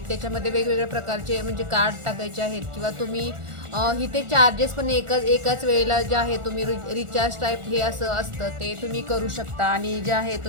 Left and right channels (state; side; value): late; left; 1.4 ms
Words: त्याच्यामध्ये वेगवेगळ्या प्रकारचे म्हणजे कार्ड टाकायचे आहेत किंवा तुम्ही इथे चार्जेस पण एकाच वेळेला जे आहे तुम्ही रिचार्ज टाईप हे असं असतं ते तुम्ही करू शकता आणि जे आहे